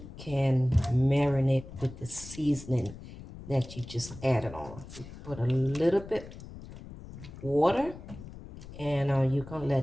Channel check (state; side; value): noise; left; rumble, 14 dB below the sound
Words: can marinate with the seasoning that you just added on. You put a little bit water and you can